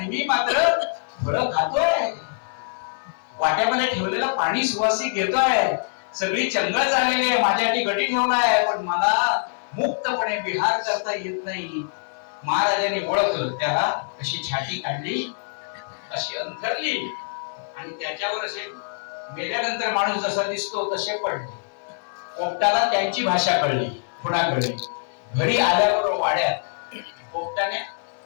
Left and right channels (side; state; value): right; silent; digital silence